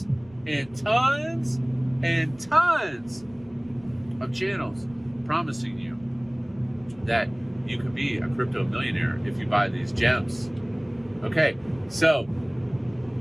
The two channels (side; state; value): left; noise; rumble, 24 dB below the sound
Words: and tons and tons of channels promising you that you can be a crypto millionaire if you buy these gems. Okay, so